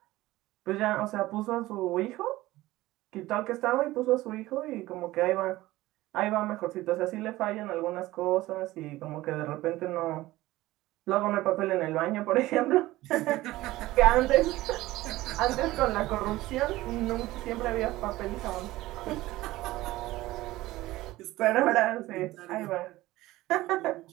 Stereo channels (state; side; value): quieter; left; 17.5 dB